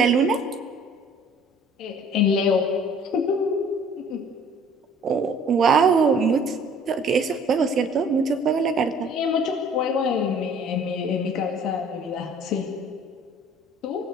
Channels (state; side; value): normal; both; correlation 0.53